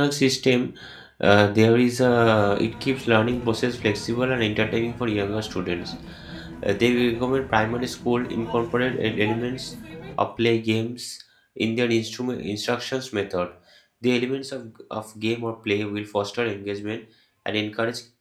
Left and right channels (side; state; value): both; identical; correlation 1.00